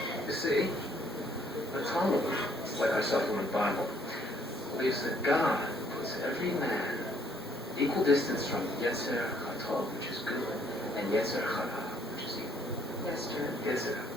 You see, the Talmud, like our supplement Bible, believes that God puts every man equal distance from Yetzer Hatov, which is good, and Yetzer Hara, which is evil. Yes, sir. Yetzer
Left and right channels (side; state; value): both; normal; correlation 0.66